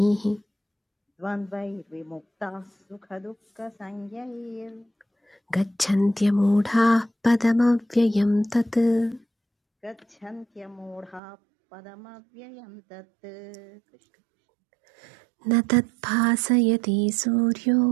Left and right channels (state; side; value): drops out; left; at 11.2 s